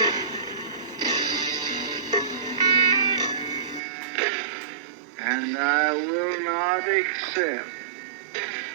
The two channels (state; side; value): drops out; left; at 3.8 s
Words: And I will not accept